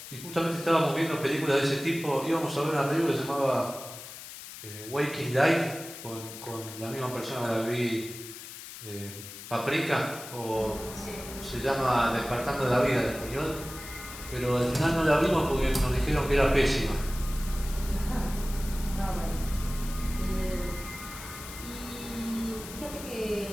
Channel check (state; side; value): noise; left; hiss, 12 dB below the sound